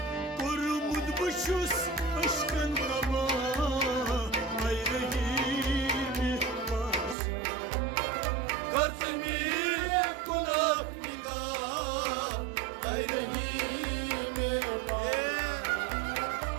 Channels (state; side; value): drops out; left; at 7.2 s